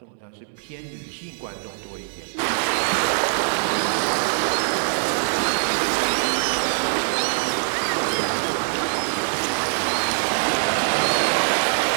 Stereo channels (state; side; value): silent; left; digital silence